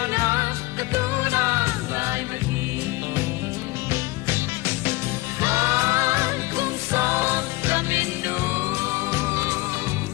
na katuna lai ma hi han kung son ramin nu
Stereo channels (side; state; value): right; quieter; 21.3 dB